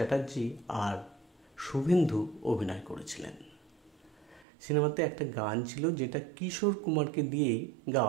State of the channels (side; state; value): left; drops out; at 4.5 s